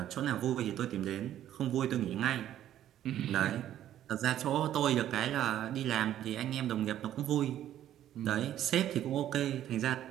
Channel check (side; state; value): left; quieter; 11.7 dB